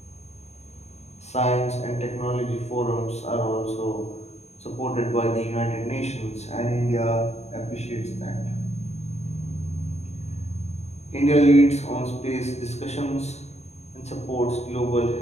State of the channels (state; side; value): late; right; 0.32 ms